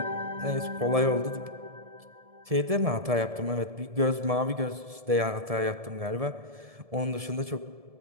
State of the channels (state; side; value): late; left; 1.7 ms